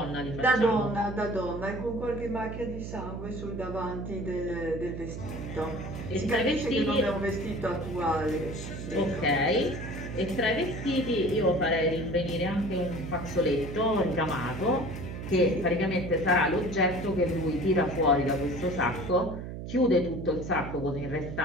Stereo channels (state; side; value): noise; right; hum, 8 dB below the sound